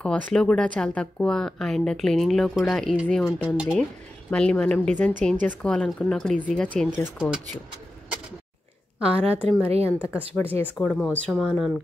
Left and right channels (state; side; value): normal; both; correlation 0.92